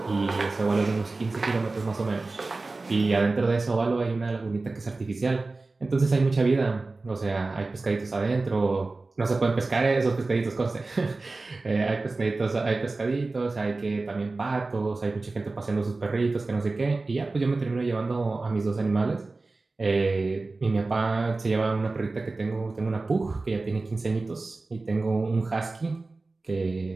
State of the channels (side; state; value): left; quieter; 3.5 dB